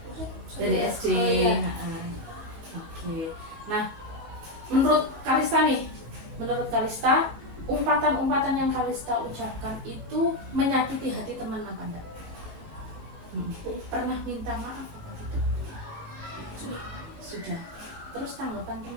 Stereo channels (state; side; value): late; left; 18 ms